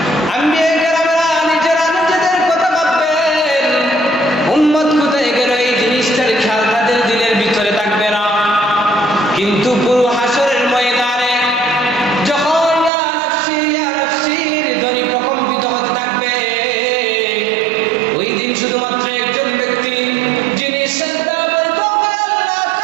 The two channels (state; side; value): drops out; left; at 12.9 s